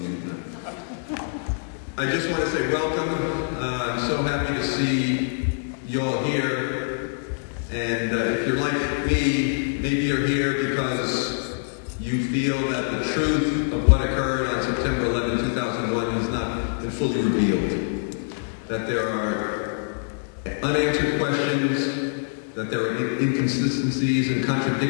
anytime. I just want to say welcome. I'm so happy to see you all here. And if you're like me, maybe you're here because you feel that the truth of what occurred on September 11, 2001 has not been fully revealed. That there are unanswered questions, that there are inconsistencies and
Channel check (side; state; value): right; silent; digital silence